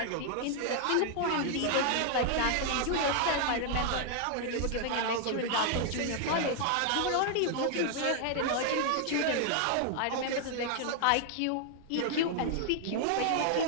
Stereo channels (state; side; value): different; both; correlation 0.00